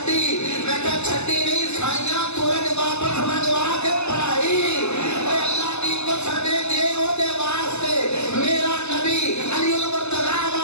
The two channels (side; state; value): right; late; 0.81 ms